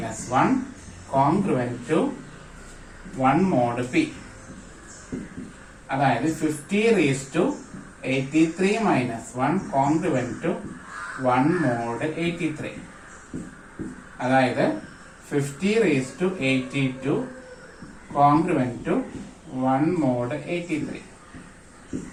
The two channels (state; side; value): identical; both; correlation 1.00